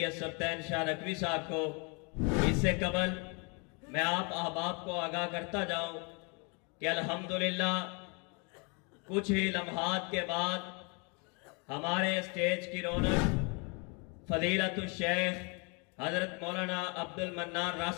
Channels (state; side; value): quieter; right; 33.5 dB